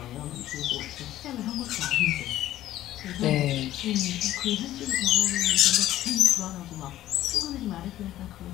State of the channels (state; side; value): quieter; right; 13.8 dB